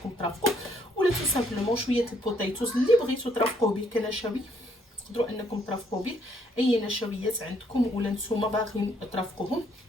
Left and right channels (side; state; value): both; normal; correlation 0.68